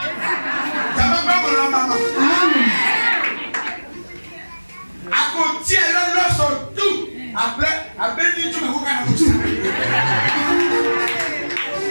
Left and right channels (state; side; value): inverted; both; correlation -1.00